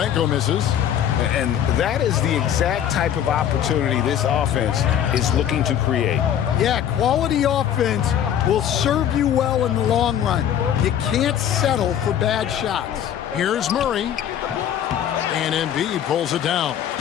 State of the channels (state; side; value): quieter; right; 9.8 dB